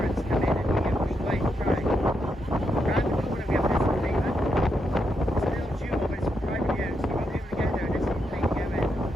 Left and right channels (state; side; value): normal; both; correlation 0.82